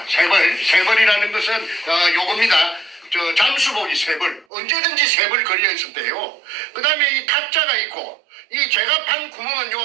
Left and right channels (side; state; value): left; drops out; at 4.5 s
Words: 벌이라는 것은 요겁니다. 잠수복이 3벌, 언제든지 3벌 걸려 있었대요. 그 다음에 이 탁자가 있고, 이 제가 판 구멍은